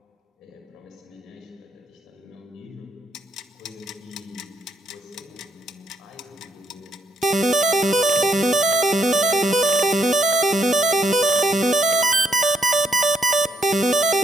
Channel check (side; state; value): both; normal; correlation 0.72